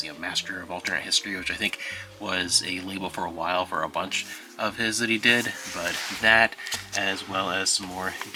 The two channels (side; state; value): both; identical; correlation 1.00